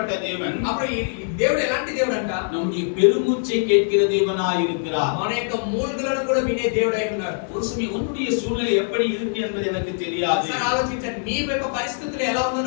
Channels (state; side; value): silent; right; 63 dB below the other